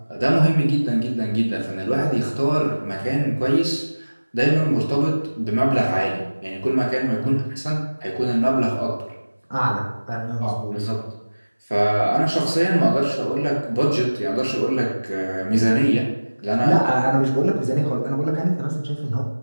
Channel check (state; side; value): inverted; both; correlation -1.00